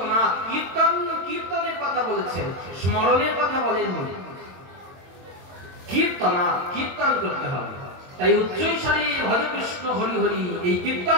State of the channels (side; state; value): left; late; 22 ms